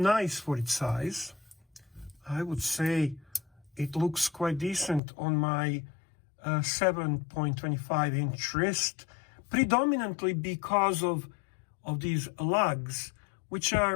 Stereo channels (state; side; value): drops out; right; at 5.0 s